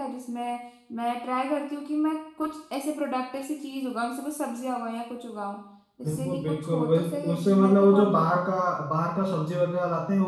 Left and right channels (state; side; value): identical; both; correlation 1.00